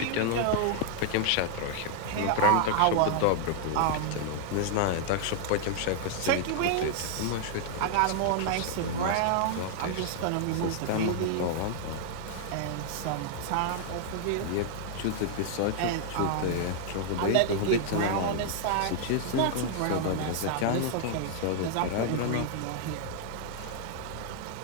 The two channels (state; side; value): different; both; correlation 0.00